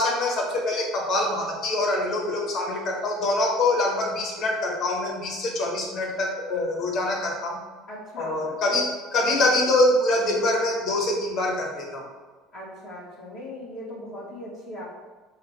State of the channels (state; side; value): normal; both; correlation 0.49